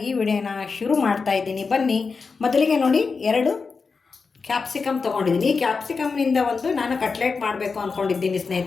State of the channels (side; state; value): right; quieter; 4.8 dB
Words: ಈ ವಿಡಿಯೋನ ಶುರು ಮಾಡ್ತಾ ಇದ್ದೀನಿ. ಬನ್ನಿ. ಮೊದಲಿಗೆ ನೋಡಿ 2 ಕ್ಯಾಪ್ಸಿಕಮ್ ತೊಗೊಂಡಿದ್ದೀನಿ. ಈ ಕ್ಯಾಪ್ಸಿಕಮ್ನಿಂದ ನಾನು ಕಟ್ಲೆಟ್ ಮಾಡಬೇಕು ಅಂದ್ಕೊಂಡಿದ್ದೀನಿ